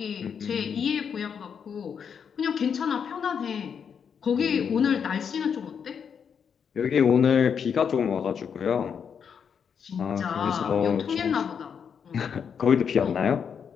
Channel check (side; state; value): right; quieter; 7.1 dB